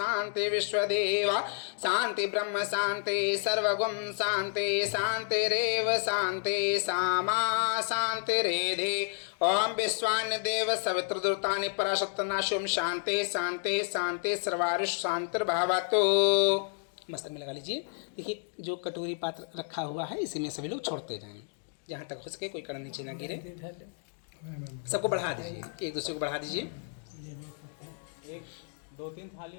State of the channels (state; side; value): silent; right; 57 dB below the other